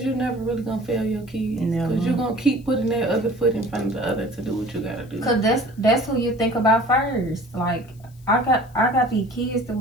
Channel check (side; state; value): left; noise; hiss, 29 dB below the sound